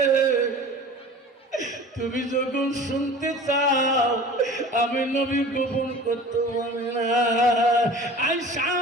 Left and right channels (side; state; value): both; normal; correlation 0.41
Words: তুমি যখন শুনতে চাও আমি নবী গোপন করতে পারি না। আয়েশা